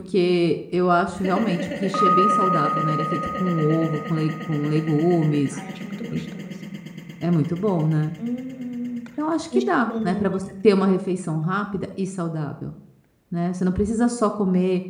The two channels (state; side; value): identical; both; correlation 1.00